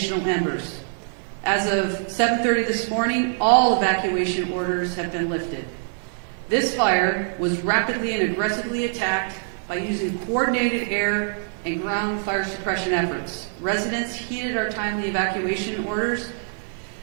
embers. As of 7:30 this morning, all evacuation orders have been lifted. This fire was rapidly and aggressively attacked by using coordinated air and ground fire suppression efforts. Residents heeded our timely evacuation orders.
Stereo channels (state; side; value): silent; left; 61 dB below the other